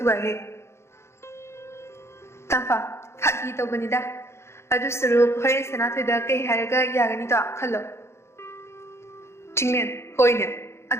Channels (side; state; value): right; late; 0.13 ms